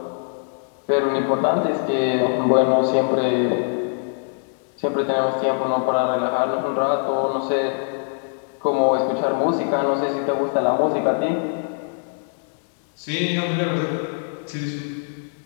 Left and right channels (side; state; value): right; silent; digital silence